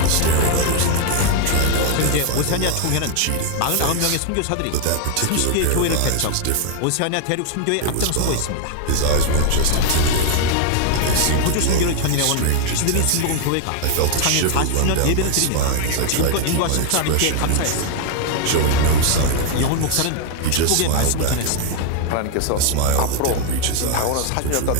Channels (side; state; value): both; different; correlation 0.00